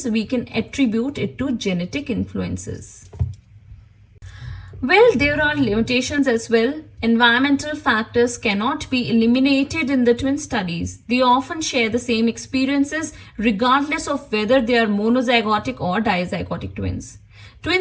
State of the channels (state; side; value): identical; both; correlation 1.00